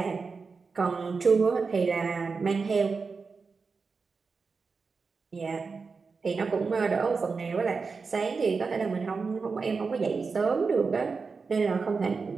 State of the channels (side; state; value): left; quieter; 4.7 dB